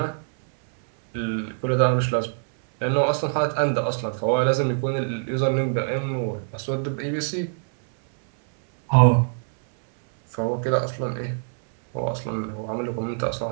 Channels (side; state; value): left; silent; 63 dB below the other